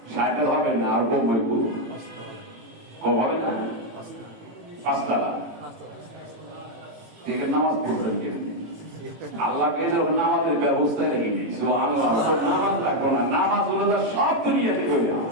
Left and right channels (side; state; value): left; late; 18 ms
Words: সাইকেল হবে না, আর কম হইব, কম হবে না, 5 তালা। ঠিক আছে, নামাজ পড়বেন কেন? আল্লাহ যখন নামাজের ব্যবস্থা রেখে নেই, আল্লাহ নামাজ রাখবো না, নামাজ হলো সব দুনিয়াতে করে